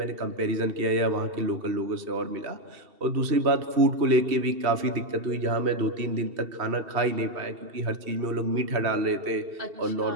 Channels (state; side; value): late; left; 2.7 ms